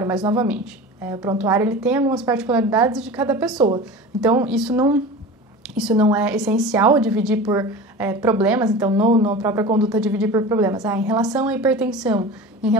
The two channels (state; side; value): normal; both; correlation 0.33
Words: mas novamente, o prontuário ele tem algumas particularidades de cada pessoa. Então, isso não é essencial dividir por problemas, então na própria conduta dividir por problemas. Em relação à hipertensão, em